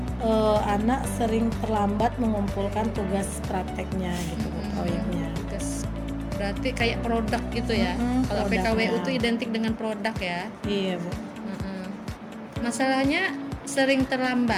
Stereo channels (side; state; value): both; identical; correlation 1.00